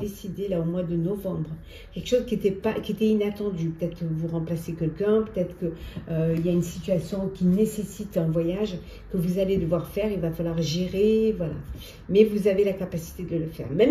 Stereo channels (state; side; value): identical; both; correlation 1.00